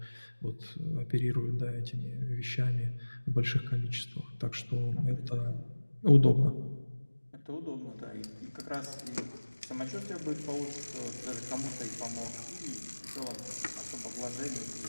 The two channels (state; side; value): inverted; both; correlation -1.00